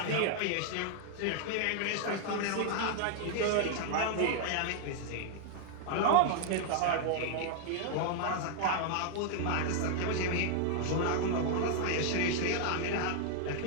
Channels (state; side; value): different; both; correlation 0.00